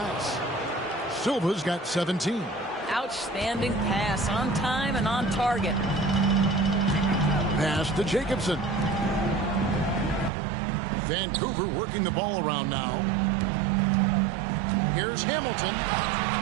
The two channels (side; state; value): left; drops out; at 10.3 s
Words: Silva's got 17. Outstanding pass on time and on target. Pass to Jacobson. Vancouver working the ball around now. Here's Hamilton.